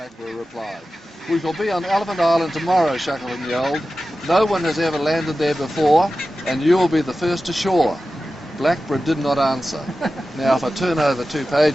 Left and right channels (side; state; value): both; normal; correlation 0.94